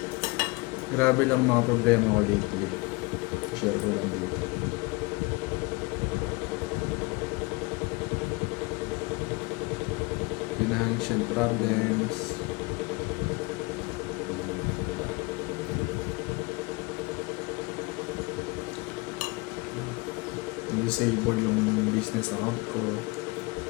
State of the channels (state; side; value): quieter; right; 26.1 dB